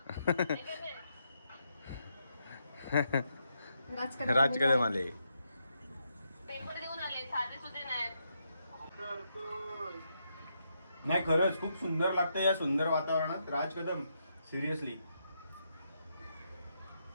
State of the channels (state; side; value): inverted; both; correlation -0.80